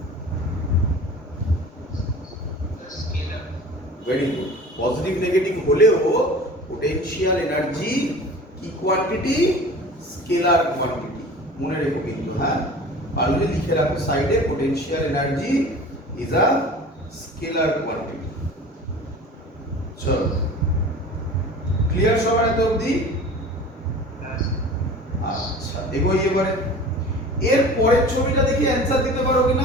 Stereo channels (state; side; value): normal; both; correlation 0.40